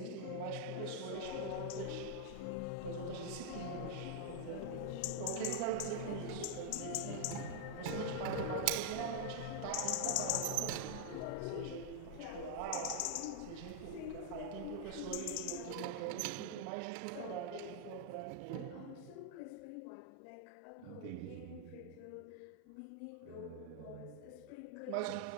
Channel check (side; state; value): both; different; correlation 0.00